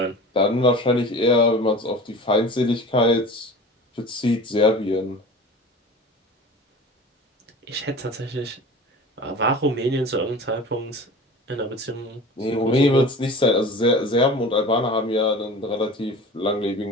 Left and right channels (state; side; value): normal; both; correlation 0.37